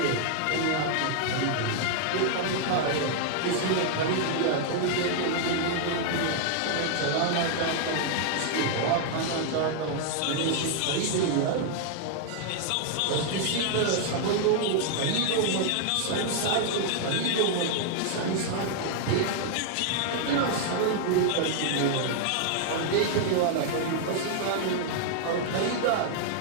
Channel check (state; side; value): different; both; correlation 0.00